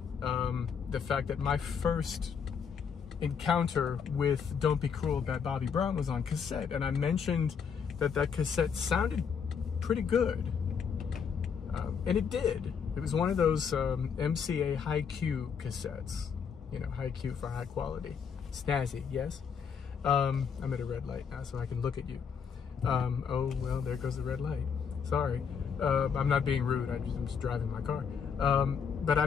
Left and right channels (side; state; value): right; quieter; 6.7 dB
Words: the fact that my first encounter with Don't Be Cruel by Bobby Brown was on cassette, and I mentioned that that cassette sounded pretty good, and it did. It was one of those MCA high Q cassettes, you know, high Q for high quality. Snazzy, yes? I'm at a red light now, so I can look at you. Oh, well, there goes the red light. Sorry. I'm not being rude, I'm just driving my car. But I